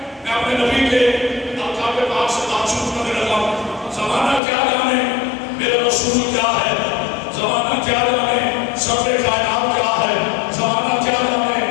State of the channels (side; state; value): right; drops out; at 4.4 s